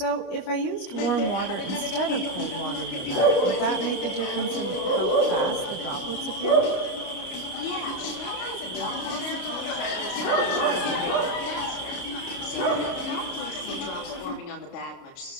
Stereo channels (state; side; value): late; right; 29 ms